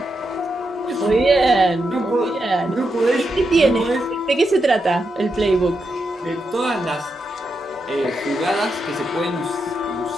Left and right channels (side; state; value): both; normal; correlation 0.85